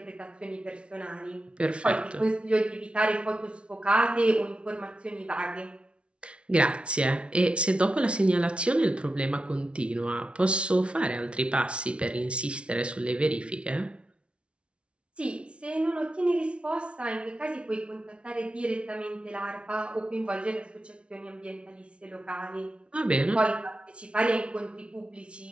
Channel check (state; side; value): late; left; 0.059 ms